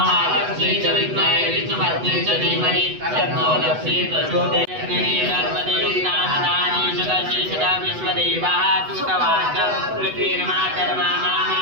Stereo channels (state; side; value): late; left; 8.0 ms